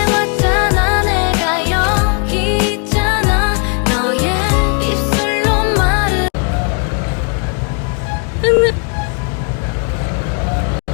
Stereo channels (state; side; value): quieter; right; 36.8 dB